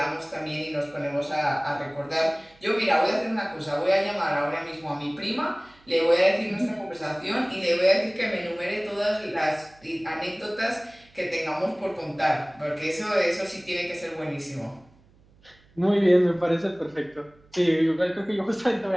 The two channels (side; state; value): right; noise; hum, 30 dB below the sound